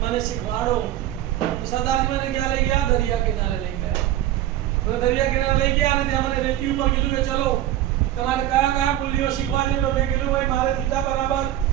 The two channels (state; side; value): quieter; left; 13.0 dB